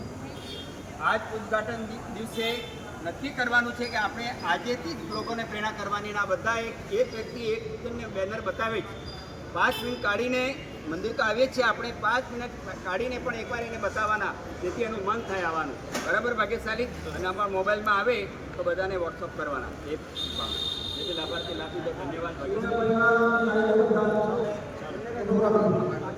આજ ઉદ્ઘાટન દિવસે નક્કી કરવાનું છે કે આપણે આજેથી જ લોકોને પ્રેરણા કરવાની. આ બધા એક વ્યક્તિ એક બેનર બતાવે છે. 5 મિનિટ કાઢીને મંદિર તો આવીએ જ છે, આપણે 5 મિનિટ કાઢીને પણ એકવાર એને બતાવવાના, જેથી એનું મન થાય આવવાનું. બરાબર ભાગ્યશાલી? અને અમારા મોબાઈલમાં આવે તો બધાને વોટ્સઅપ કરવાના. એ જેથી લાભાર્થી લાભ લીધો. ધન્યવાદ.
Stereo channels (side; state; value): both; identical; correlation 1.00